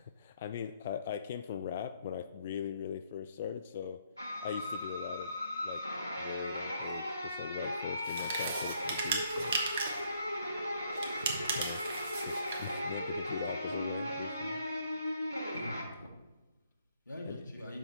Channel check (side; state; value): both; inverted; correlation -0.70